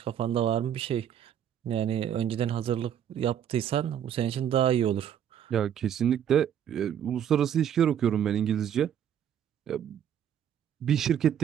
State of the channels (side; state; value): left; quieter; 9.5 dB